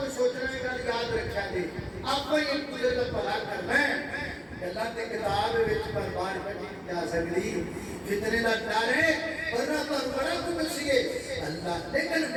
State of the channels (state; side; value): identical; both; correlation 1.00